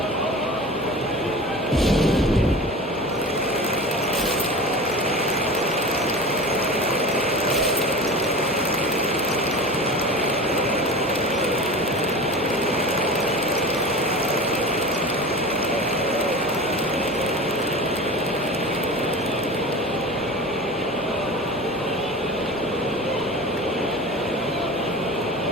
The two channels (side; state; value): both; normal; correlation 0.34